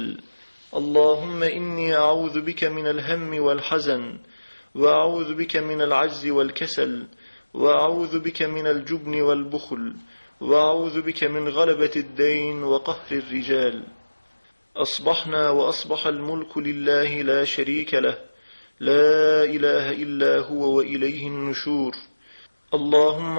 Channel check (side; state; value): both; inverted; correlation -1.00